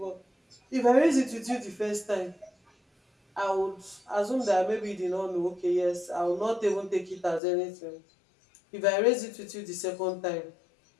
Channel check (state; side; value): drops out; right; at 7.4 s